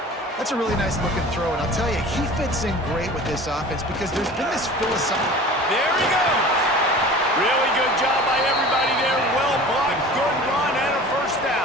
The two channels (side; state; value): both; normal; correlation 0.40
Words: That's a really nice looking throw, and I'll tell you, he fits in great with this offense because there's been this philosophy. There he goes. Really good job by everybody there. Well blocked, good run, and a 1st